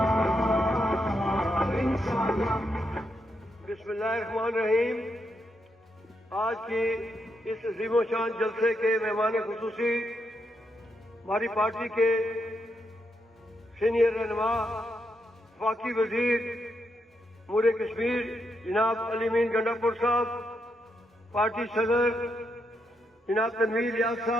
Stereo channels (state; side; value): normal; both; correlation 0.81